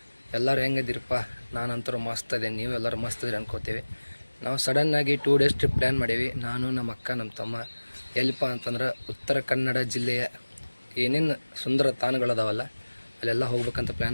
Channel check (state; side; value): inverted; both; correlation -1.00